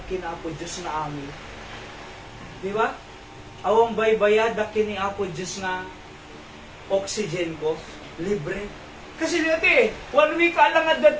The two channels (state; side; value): identical; both; correlation 1.00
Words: kinapo Diyos na amin. Di ba? Awang baybayadak kinapo Diyos nga oxygen ko, libre. Kasi dati, 1 week ka lang at